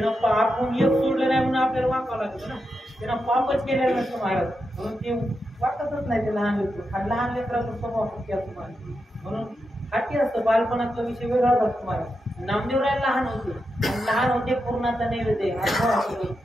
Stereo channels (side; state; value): both; normal; correlation 0.87